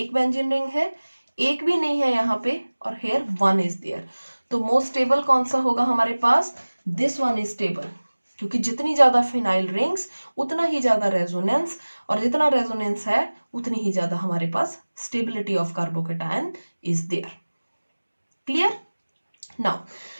बेंजीन रिंग है, एक भी नहीं है यहाँ पे, और हेयर वन इज देयर। तो मोस्ट स्टेबल कौन सा होगा हमारे पास? दिस वन इज स्टेबल, क्योंकि जितनी ज्यादा फिनाइल रिंग्स उतना ही ज्यादा रेजोनेंस, और जितना रेजोनेंस है उतनी ही ज्यादा हमारे पास stability of carbocation is there. Clear? Now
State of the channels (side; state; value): both; inverted; correlation -1.00